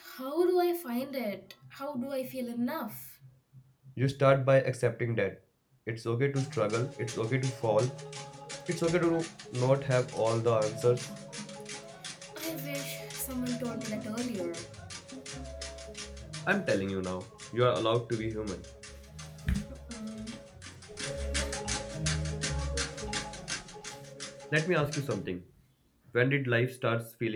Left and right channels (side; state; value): both; identical; correlation 1.00